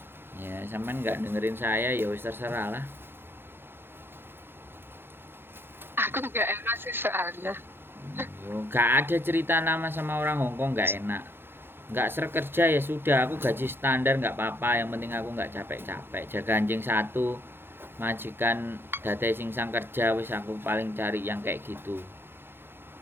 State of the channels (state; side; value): late; left; 0.10 ms